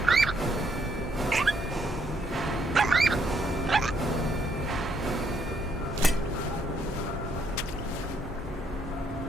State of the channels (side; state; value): both; normal; correlation 0.71